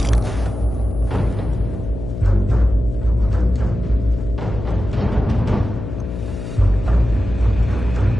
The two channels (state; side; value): noise; left; hum, 8 dB below the sound